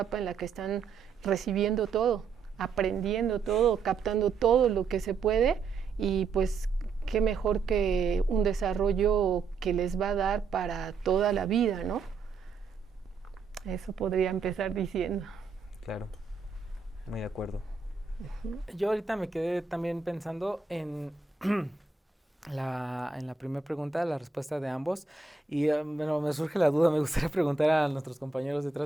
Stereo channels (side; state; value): left; quieter; 4.8 dB